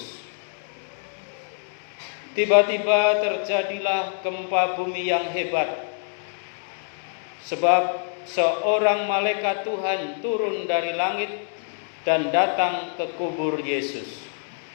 Tiba-tiba terjadilah gempa bumi yang hebat, sebab seorang malaikat Tuhan turun dari langit dan datang ke kubur Yesus.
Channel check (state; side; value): silent; right; 61 dB below the other